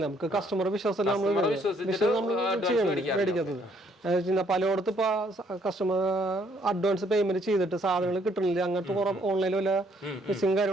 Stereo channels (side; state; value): both; normal; correlation 0.67